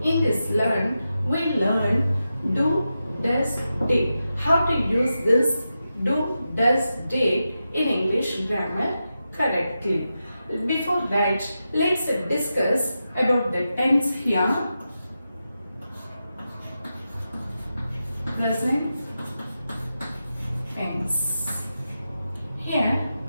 In this we learn do, does, did. How to use this do, does, did in English grammar correctly. Before that, let's discuss about the tense here. Present tense. Here,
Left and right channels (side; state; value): both; inverted; correlation -0.90